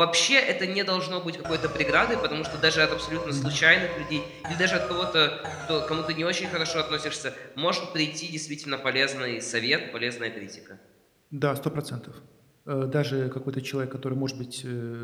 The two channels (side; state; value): both; identical; correlation 1.00